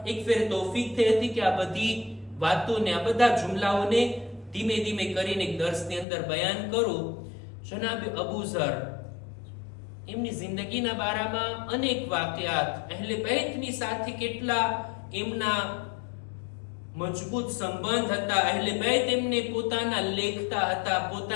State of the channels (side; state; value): right; drops out; at 6.1 s